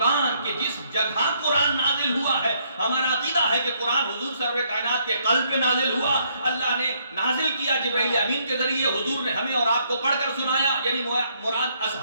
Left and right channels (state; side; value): inverted; both; correlation -0.70